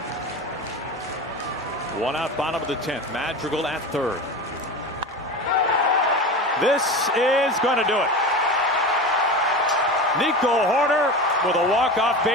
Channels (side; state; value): both; normal; correlation 0.28